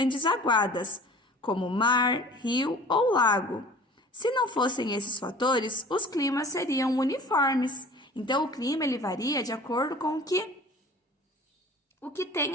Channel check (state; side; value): normal; both; correlation 0.45